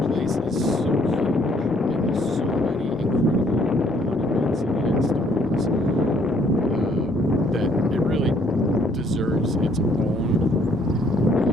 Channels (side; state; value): both; normal; correlation 0.65